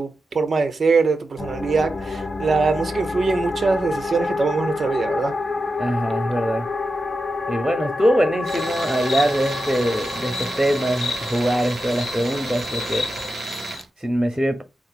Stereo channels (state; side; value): normal; both; correlation 0.90